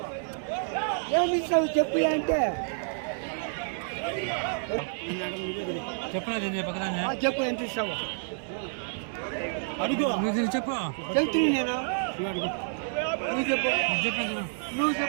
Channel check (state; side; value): silent; left; 59 dB below the other